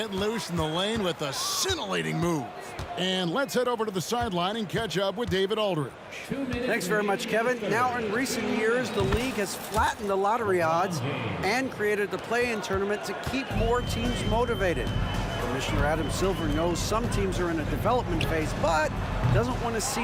loose in the lane with a scintillating move. And let's head over to the sideline and catch up with David Aldridge. Thanks very much, Kevin. Now, in recent years, the league has flattened the lottery odds and created the play-in tournament to keep more teams motivated. Commissioner Adam Silver knows some teams are in a development phase, but doesn't want to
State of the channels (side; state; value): both; identical; correlation 1.00